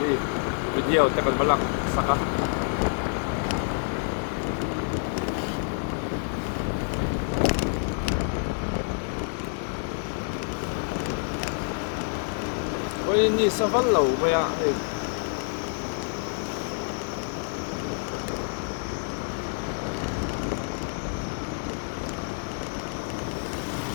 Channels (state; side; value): silent; right; 60 dB below the other